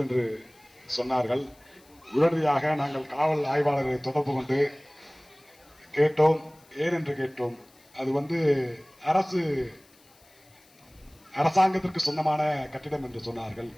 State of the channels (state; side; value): noise; left; hiss, 29 dB below the sound